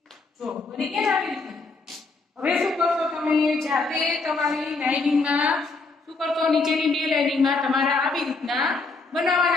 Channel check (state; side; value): quieter; right; 3.8 dB